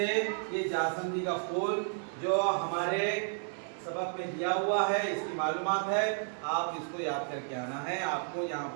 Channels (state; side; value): silent; left; 56 dB below the other